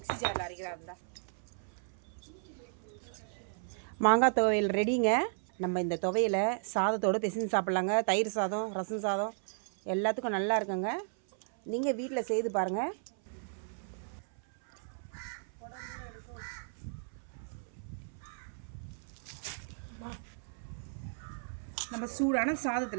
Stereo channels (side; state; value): left; silent; 55 dB below the other